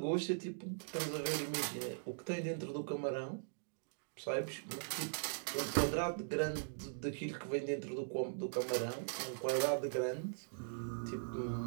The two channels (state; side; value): silent; left; digital silence